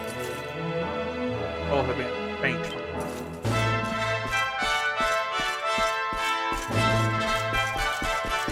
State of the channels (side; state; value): both; identical; correlation 1.00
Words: both have been faint.